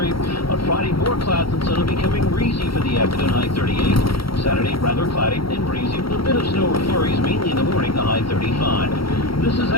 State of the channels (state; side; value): late; right; 0.74 ms